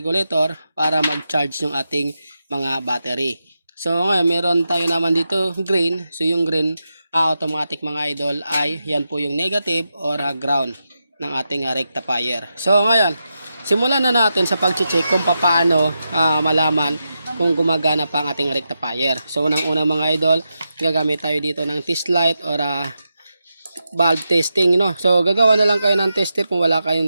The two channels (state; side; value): inverted; both; correlation -0.88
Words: para mag-charge yung ating mga battery. So ngayon meron tayo naman dito green. So yung green automatic mga idol ay yan po yung negative or ground ng ating rectifier. So ngayon simulan na natin sa pag-check kung paano malaman kung gumagana pa ang ating rectifier. So unang-una mga idol, gagamit tayo dito ng test light or valve testing, no? So gagawa na lang kayo ng tester. Kung wala